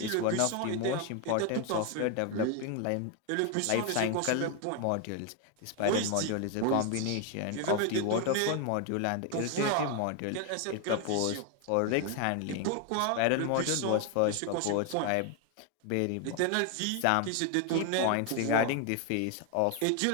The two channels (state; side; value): different; both; correlation 0.01